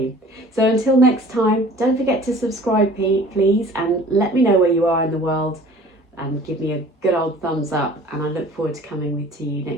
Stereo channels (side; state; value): both; normal; correlation 0.48